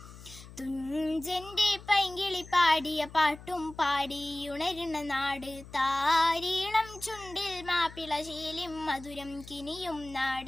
തുഞ്ചന്റെ പൈങ്കിളി പാടിയ പാട്ടും പാടിയുണരുന്ന നാട്, താരീളം ചുണ്ടിൽ മാപ്പിള ശീലിം മധുരം കിനിയും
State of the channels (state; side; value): noise; left; hum, 17 dB below the sound